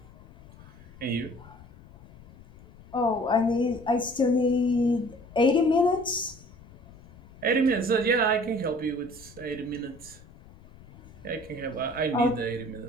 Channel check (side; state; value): left; noise; rumble, 21 dB below the sound